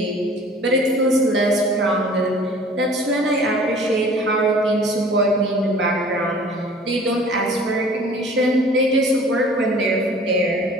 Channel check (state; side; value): normal; both; correlation 0.48